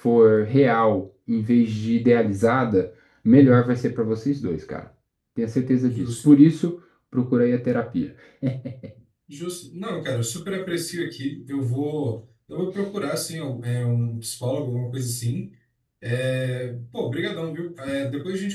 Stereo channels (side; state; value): both; identical; correlation 1.00